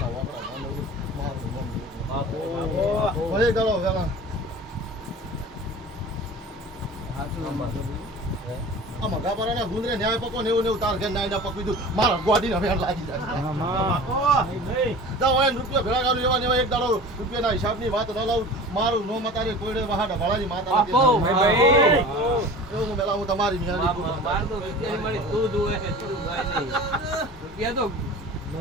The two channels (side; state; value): both; normal; correlation 0.38